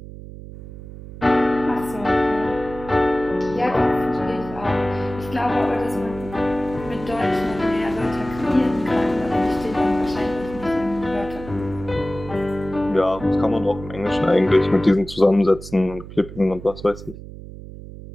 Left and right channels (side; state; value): right; noise; hum, 14 dB below the sound